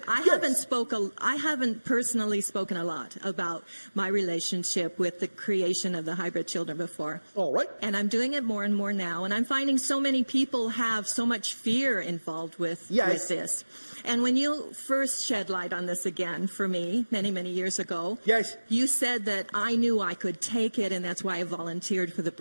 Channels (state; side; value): inverted; both; correlation -1.00